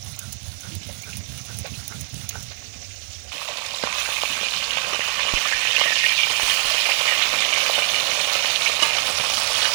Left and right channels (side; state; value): left; silent; digital silence